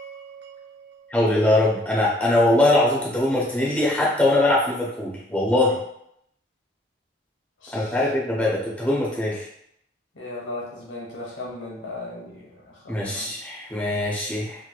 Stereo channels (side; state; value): both; normal; correlation 0.60